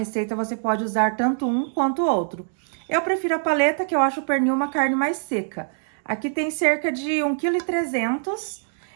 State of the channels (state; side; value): silent; left; digital silence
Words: você pode usar tanto um quanto o outro. Eu prefiro a paleta, que eu acho o pernil uma carne mais seca. Aqui tem cerca de 1,3 kg.